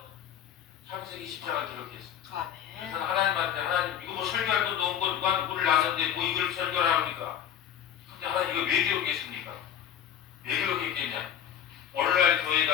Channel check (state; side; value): quieter; right; 9.7 dB